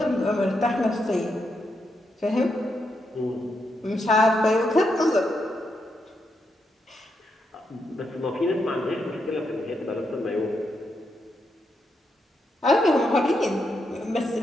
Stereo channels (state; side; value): normal; both; correlation 0.82